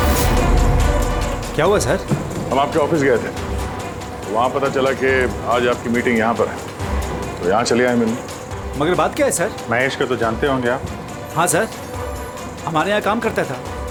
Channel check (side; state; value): both; identical; correlation 1.00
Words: क्या हुआ सर? हम आपके ऑफिस गए थे, वहाँ पता चला कि आज आपकी मीटिंग यहाँ पर है, तो यहाँ चले आए मिलने। मगर बात क्या है सर? महेश को तो जानते होंगे आप? हाँ सर, हमारे यहाँ काम करता था,